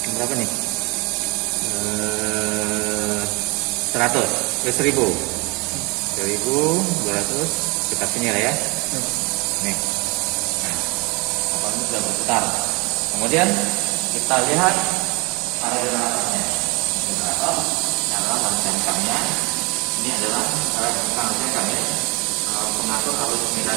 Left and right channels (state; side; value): quieter; left; 27.1 dB